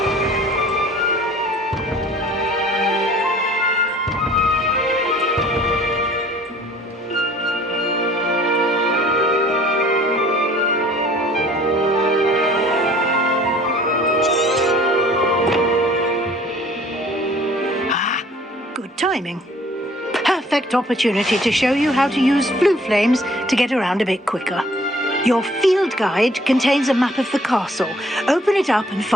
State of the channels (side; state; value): both; normal; correlation 0.54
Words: Good timing. Perfect opportunity to show you how to use blue flames to get around a bit quicker. Your field guide contains a map of the castle. Open it up and